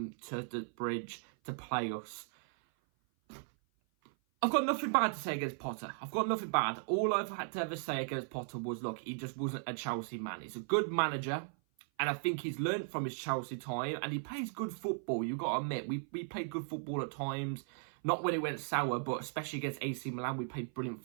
to the bridge to play us. I've got nothing bad to say against Potter. I've got nothing bad. All I've had to ever say against Potter was, look, he just wasn't a Chelsea man. He's a good manager, and I think he's learnt from his Chelsea time, and he plays good football. You've got to admit, we played good football at times. Not when it went sour, but especially against AC Milan, we played brilliant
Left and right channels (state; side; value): silent; left; 53 dB below the other